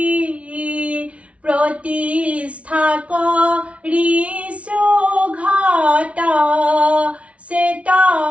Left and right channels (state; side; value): late; left; 0.063 ms